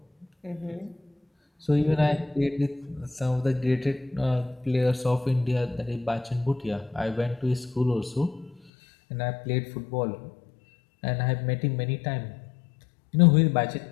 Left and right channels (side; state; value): right; drops out; at 8.7 s